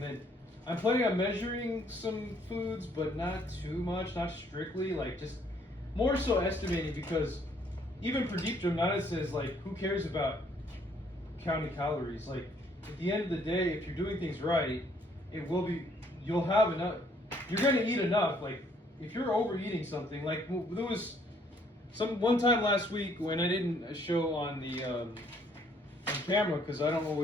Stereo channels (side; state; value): both; normal; correlation 0.65